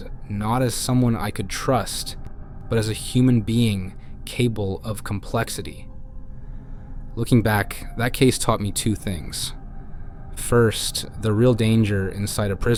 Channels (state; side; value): identical; both; correlation 1.00